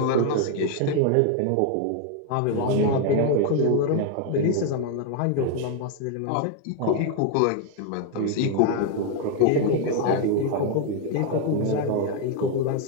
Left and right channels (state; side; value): different; both; correlation 0.01